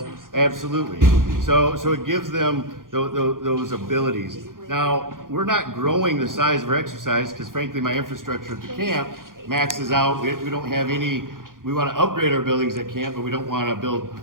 absolutely. So it gives them those abilities. Now, we're not growing the size of our exercise, because frankly, my infrastructure at the camp maxes out. We don't have any. We want to upgrade our buildings at camp, but we don't want to build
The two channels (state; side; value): late; left; 0.90 ms